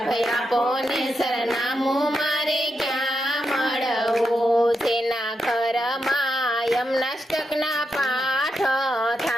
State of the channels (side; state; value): both; normal; correlation 0.85